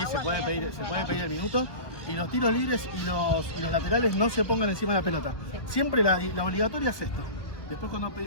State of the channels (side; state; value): right; late; 1.4 ms